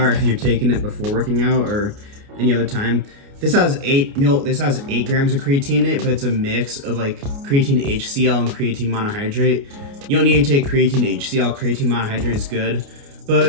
if you're taking it before working out or any other time. This has 8 grams of creatine in it, but it's a mix of like creatine HCl and creatine monohydrate. You don't need to take creatine HCl. Creatine monohydrate is good,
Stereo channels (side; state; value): left; late; 29 ms